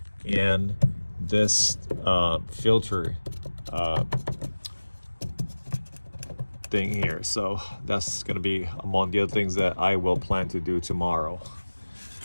and this filter thing here. So that's going to be among the other things that I will plan to do tomorrow.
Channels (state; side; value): inverted; both; correlation -1.00